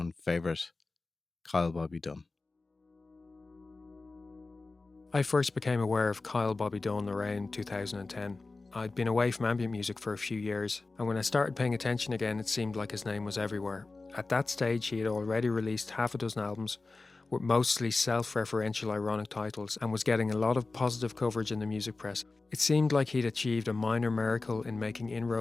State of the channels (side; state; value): right; quieter; 3.5 dB